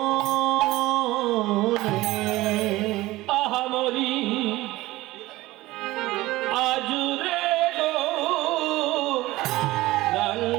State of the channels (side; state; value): left; quieter; 18.5 dB